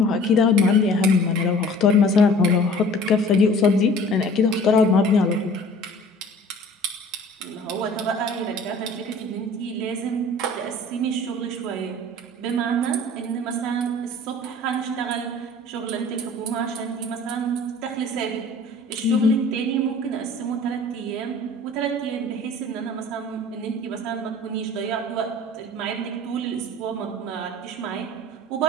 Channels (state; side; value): normal; both; correlation 0.47